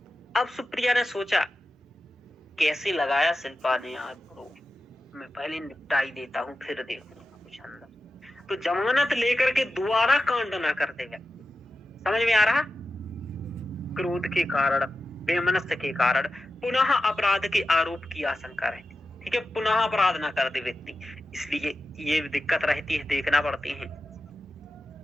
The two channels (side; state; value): both; normal; correlation 0.92